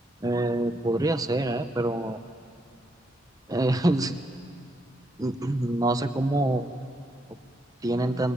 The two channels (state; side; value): normal; both; correlation 0.77